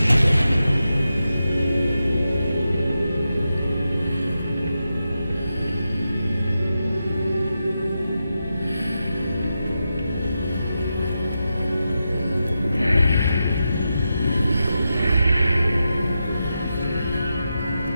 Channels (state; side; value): inverted; both; correlation -0.89